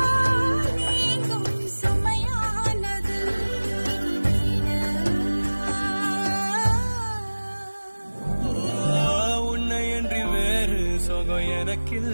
நீங்கும் சுமையானது உன்னை என்று வேறு சுகம்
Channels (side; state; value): both; inverted; correlation -1.00